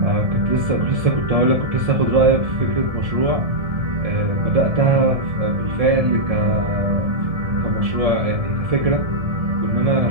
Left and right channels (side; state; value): left; late; 1.7 ms